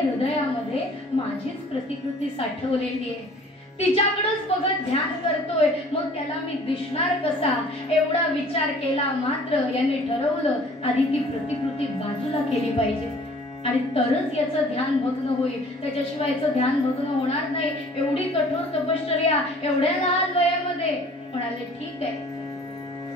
हृदयामध्ये माझीच प्रतिकृती साठवलेली आहे, तिच्याकडेच बघत ध्यान करतोय, मग त्याला मी दिसणार कसा, एवढा विचार केला. मात्र यांनी ठरवलं आधी ती प्रतिकृती बाजूला केली पाहिजे आणि तरच याचं ध्यान भग्न होईल, त्याच्याशिवाय याचं ध्यान भग्न होणार नाही. एवढी कठोर तपश्चर्या एवढ्या लहान वयामध्ये. म्हणाले ठीक आहे.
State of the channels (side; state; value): both; normal; correlation 0.52